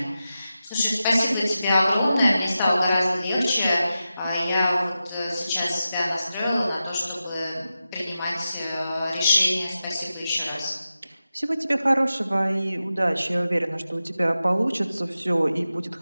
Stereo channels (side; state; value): both; inverted; correlation -0.92